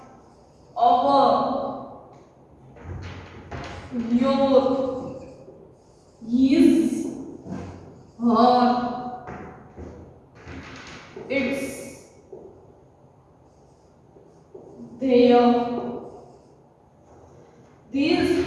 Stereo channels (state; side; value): identical; both; correlation 1.00